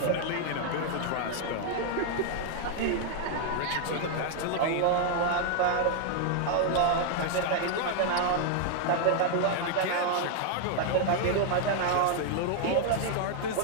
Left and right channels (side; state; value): both; different; correlation 0.00